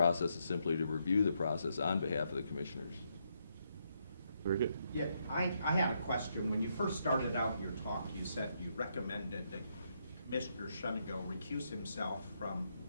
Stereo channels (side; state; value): both; inverted; correlation -0.78